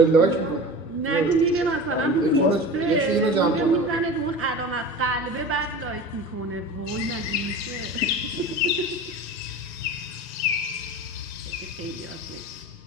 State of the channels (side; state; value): both; normal; correlation 0.34